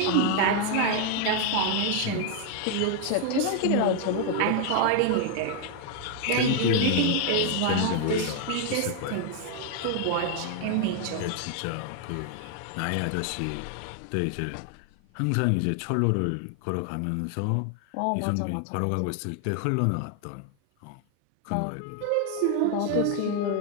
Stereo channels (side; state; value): both; different; correlation 0.00